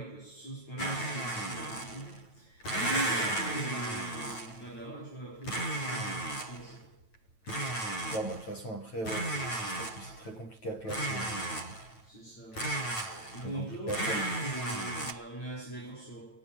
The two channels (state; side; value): late; right; 9.1 ms